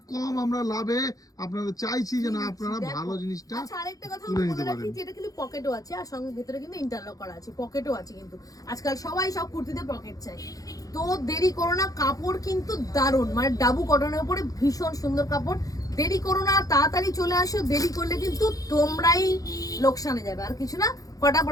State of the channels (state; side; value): late; right; 0.17 ms